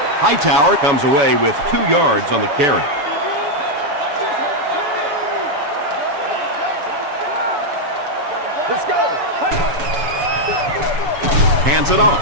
Hightower comes away with 2 yards on the carry. Let's go. Hands it off.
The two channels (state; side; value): late; left; 6.9 ms